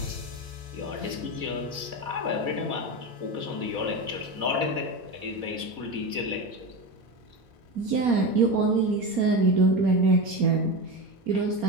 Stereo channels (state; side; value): late; left; 4.0 ms